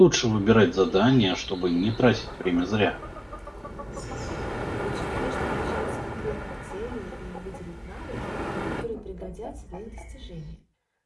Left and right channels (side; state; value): both; identical; correlation 1.00